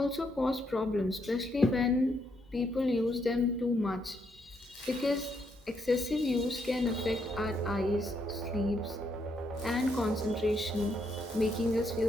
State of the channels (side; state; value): both; normal; correlation 0.76